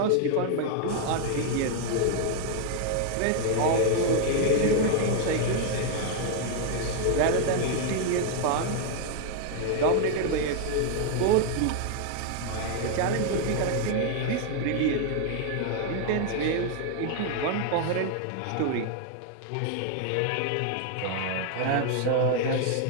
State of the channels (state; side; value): different; both; correlation 0.00